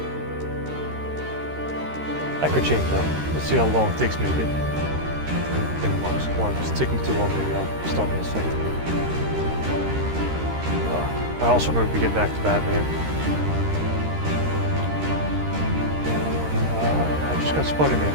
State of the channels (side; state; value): left; late; 13 ms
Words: That could change though. Let's see how long it takes me to get Kingdom Hearts 1. If it's taking too long, maybe I'll start Mass Effect 3. I also remember getting back to Batman. I just got